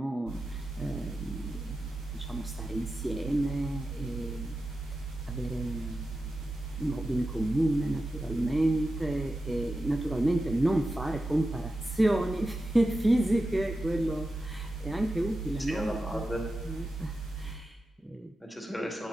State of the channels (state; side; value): normal; both; correlation 0.91